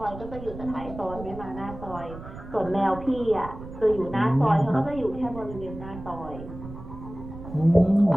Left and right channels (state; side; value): noise; right; rumble, 13 dB below the sound